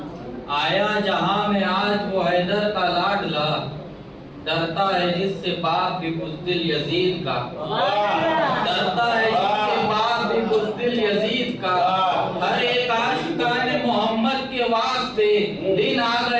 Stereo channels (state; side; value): identical; both; correlation 1.00